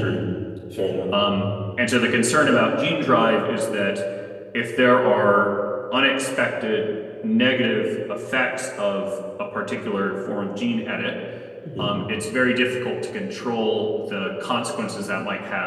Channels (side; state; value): both; identical; correlation 1.00